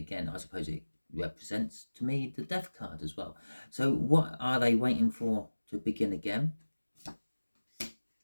I suppose it represents to me the Death card as well. So what are they waiting for to begin again?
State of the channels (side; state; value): both; inverted; correlation -1.00